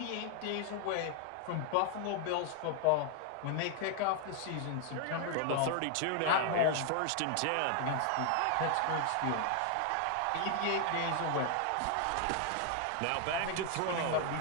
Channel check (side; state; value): both; different; correlation 0.00